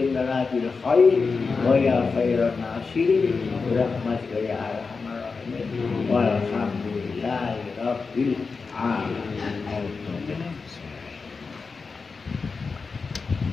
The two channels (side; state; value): right; quieter; 4.7 dB